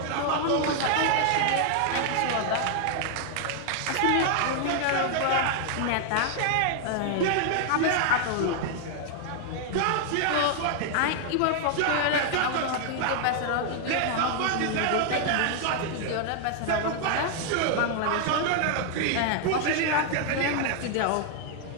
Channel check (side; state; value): both; different; correlation 0.00